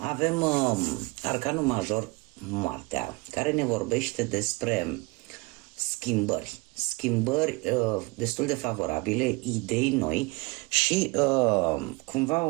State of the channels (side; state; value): left; quieter; 25.9 dB